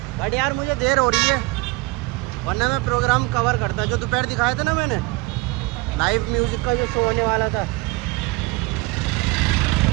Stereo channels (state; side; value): quieter; left; 22.9 dB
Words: बट यार मुझे देर हो रही है, वरना मैं प्रोग्राम कवर करता। जो दोपहर दिखाया था ना मैंने, लाइव म्यूज़िक का जो शो होने वाला था,